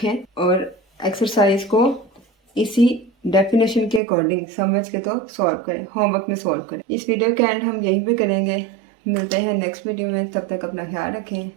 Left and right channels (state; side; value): drops out; left; at 4.0 s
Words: और एक्सरसाइज को इसी डेफिनेशन के अकॉर्डिंग समझ के तो सॉल्व करें, होमवर्क में सॉल्व करें। इस वीडियो के एंड हम यहीं पे करेंगे। मिलते हैं नेक्स्ट वीडियो में, तब तक अपना ख्याल रखें।